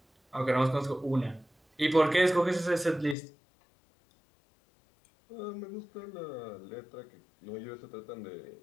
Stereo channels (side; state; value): right; drops out; at 3.2 s